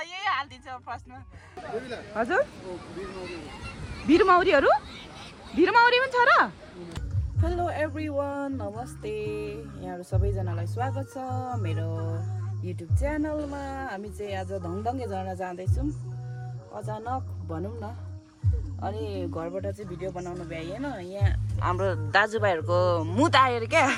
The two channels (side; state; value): both; identical; correlation 1.00